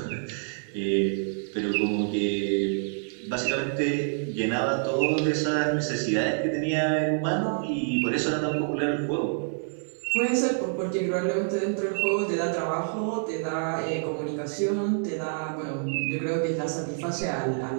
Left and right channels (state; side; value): silent; left; 60 dB below the other